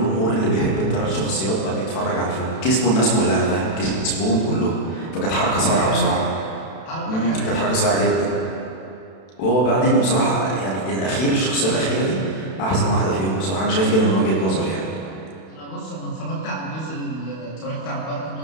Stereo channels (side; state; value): right; late; 32 ms